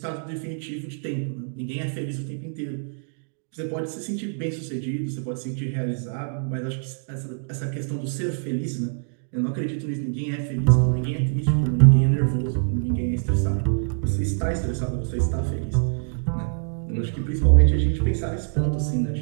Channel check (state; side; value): silent; left; digital silence